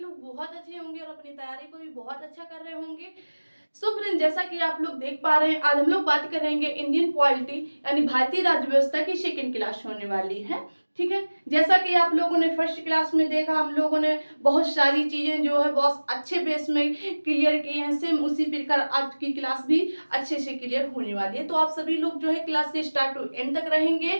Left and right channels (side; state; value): both; inverted; correlation -1.00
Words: बहुत अच्छे होंगे और अपनी तैयारी को भी बहुत अच्छा कर रहे होंगे। सो फ्रेंड, जैसा कि आप लोग देख पा रहे हैं, आज हम लोग बात करेंगे इंडियन पॉलिटी यानी भारतीय राज्य व्यवस्था की सेकंड क्लास होने वाली है। ठीक है, जैसा कि आप लोगों ने फर्स्ट क्लास में देखा, हम लोगों ने बहुत सारी चीजें जो है बहुत अच्छे बेस में क्लियर की हैं। सेम उसी प्रकार आज की क्लास भी अच्छे से क्लियर होने वाली है। तो आप सभी लोग जो है क्लास से स्टार्ट टू एंड तक रहेंगे